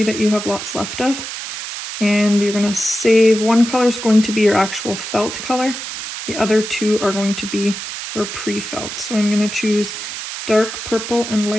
that you have lots left of. And you're going to save one color is going to be your actual felt color. The other 2 are going to be your pre-felt. So I'm going to choose dark purple and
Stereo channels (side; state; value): right; noise; hiss, 7 dB below the sound